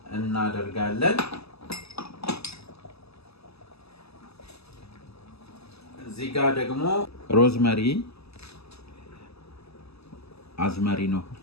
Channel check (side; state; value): right; late; 0.79 ms